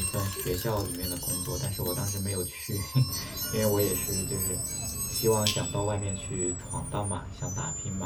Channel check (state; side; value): identical; both; correlation 1.00